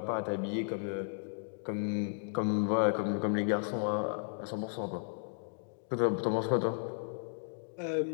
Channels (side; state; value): right; silent; digital silence